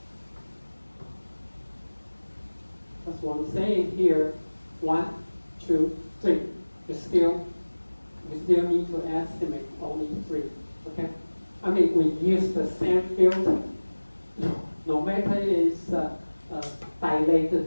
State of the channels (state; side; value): inverted; both; correlation -1.00